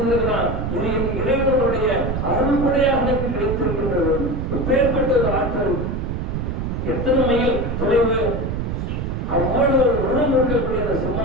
இது என் இறைவனுடைய அருள்படையாக எனக்கு கிடைத்திருக்கின்றது. பேர்பட்ட ஒரு ஆற்றல், எத்தனை மைல் தொலைவு, அவ்வளவு உணவு இருக்கக்கூடிய அந்த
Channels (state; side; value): noise; right; rumble, 2 dB below the sound